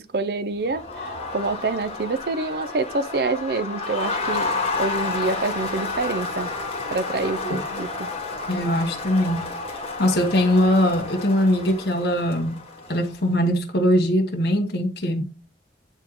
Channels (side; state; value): both; normal; correlation 0.41